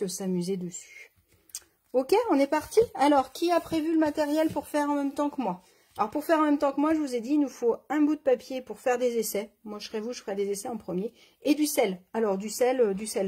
s'amuser dessus. Ok, on est parti. Alors, qui a prévu le matériel pour faire en même temps que moi? Alors, pour faire en même temps que moi, je vous ai dit, il nous faut un bout de papier pour faire des essais. Moi, je serai vous, je ferai des essais en premier. Et du sel. Alors, du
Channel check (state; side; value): identical; both; correlation 1.00